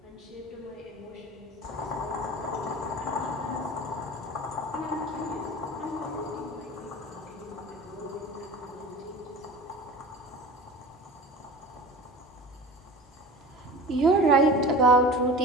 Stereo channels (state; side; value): normal; both; correlation 0.37